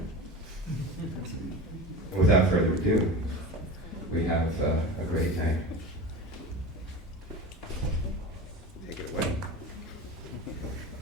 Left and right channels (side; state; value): both; normal; correlation 0.31